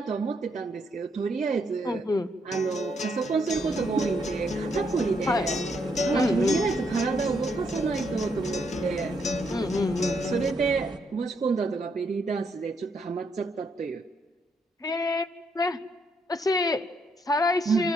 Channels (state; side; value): normal; both; correlation 0.75